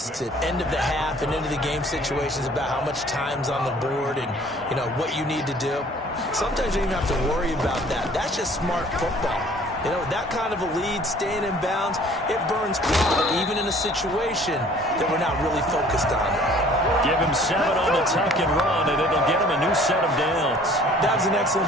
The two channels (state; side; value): normal; both; correlation 0.53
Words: at end of the half and into the game situations about how much time's on the board and, you know, what you need to do? Sometimes you don't even have to worry about that. That's just smart football. You know, that kind of a lead, staying in bounds, it burns clock, even in a situation that we're not really focused on. Give him 7 on the tuck and run, and it'll get him a new set of downs. That was an